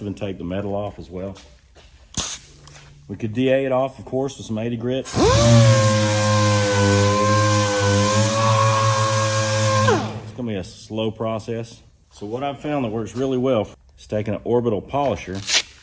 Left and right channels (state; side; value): identical; both; correlation 1.00